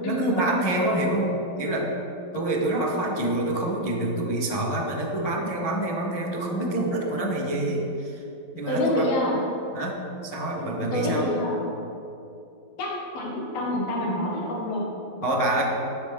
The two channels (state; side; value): late; right; 12 ms